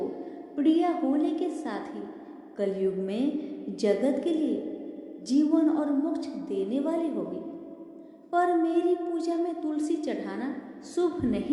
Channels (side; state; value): both; identical; correlation 1.00